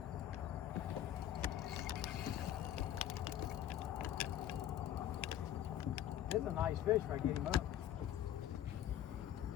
This is a nice fish if I get him up.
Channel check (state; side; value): quieter; right; 11.4 dB